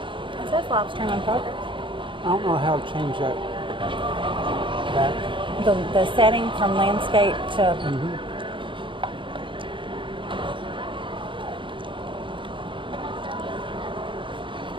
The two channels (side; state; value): left; late; 0.24 ms